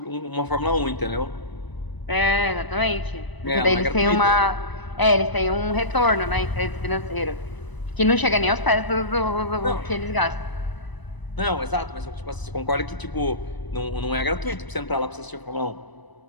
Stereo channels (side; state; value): right; late; 1.0 ms